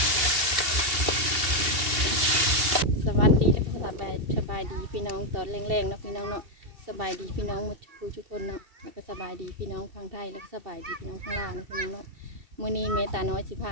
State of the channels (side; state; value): left; late; 2.7 ms